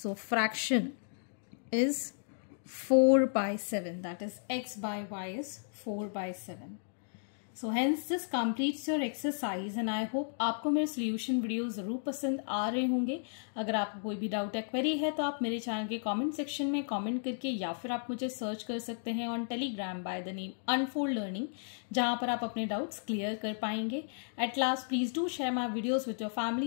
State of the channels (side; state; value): right; silent; digital silence